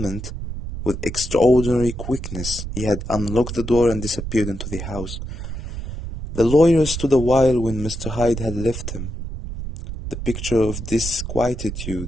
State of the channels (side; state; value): right; noise; rumble, 7 dB below the sound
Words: with extraordinary quickness, he had unlocked the door and disappeared into the house. The lawyer stood a while when Mr. Hyde had left him, the picture of